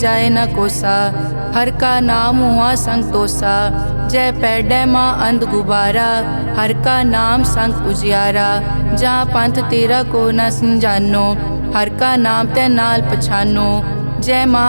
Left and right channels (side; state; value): both; inverted; correlation -1.00